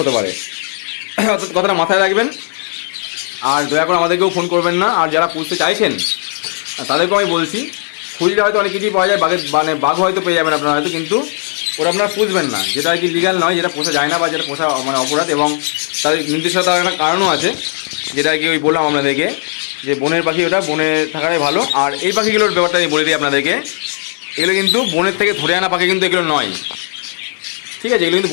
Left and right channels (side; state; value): right; silent; digital silence